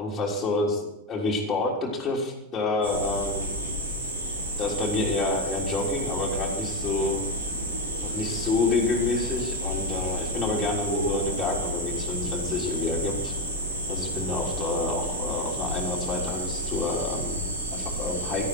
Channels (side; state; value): both; normal; correlation 0.10